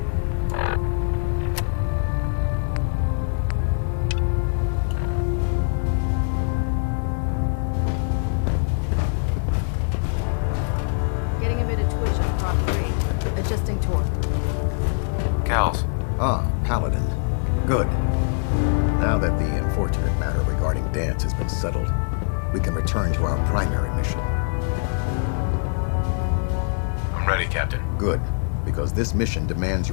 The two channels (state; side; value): silent; right; digital silence